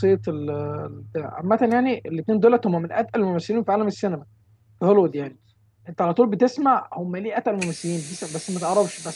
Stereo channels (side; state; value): both; identical; correlation 1.00